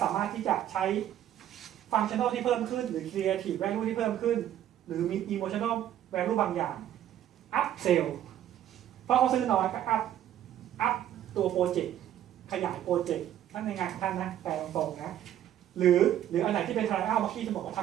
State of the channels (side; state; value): left; quieter; 11.4 dB